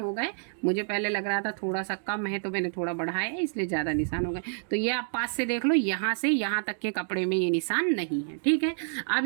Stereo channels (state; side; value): silent; left; digital silence